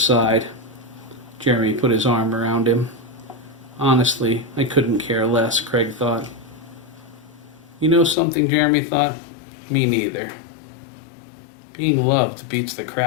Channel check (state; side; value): drops out; right; at 8.2 s